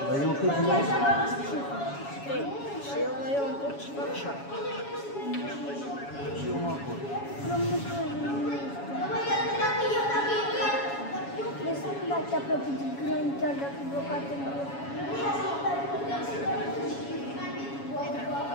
Dar eu cât iau? 3. Și el mai ia 1 punct și fac 7. Și eu mă acord. Nu mă știu, nu mă știu. Deci să nu dați aproape de grani, chiar dacă e blocat în grup.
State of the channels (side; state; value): right; late; 7.2 ms